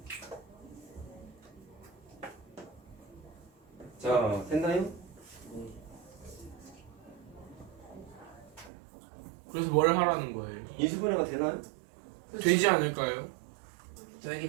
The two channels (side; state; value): left; drops out; at 8.7 s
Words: 자 됐나요? 그래서 뭘 하라는 거예요? 인수분해가 되나요? 되지 않을까요?